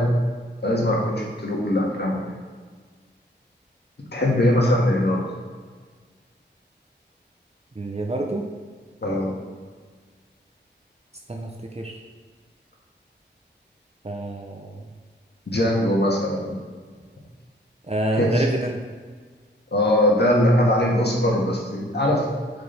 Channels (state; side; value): normal; both; correlation 0.59